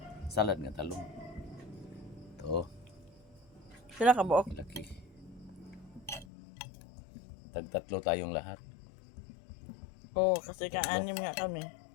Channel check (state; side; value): drops out; right; at 6.2 s